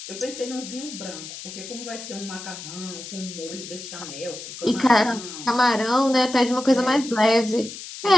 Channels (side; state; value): left; noise; hiss, 11 dB below the sound